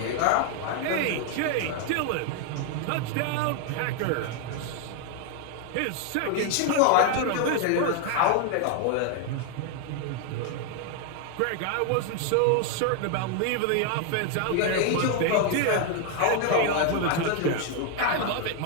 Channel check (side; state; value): both; different; correlation 0.01